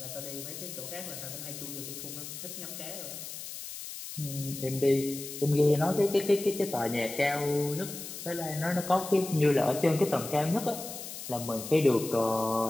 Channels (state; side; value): noise; left; hiss, 10 dB below the sound